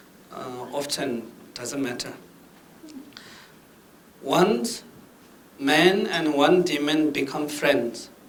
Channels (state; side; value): identical; both; correlation 1.00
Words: often, doesn't matter. Once man and one demon become friends,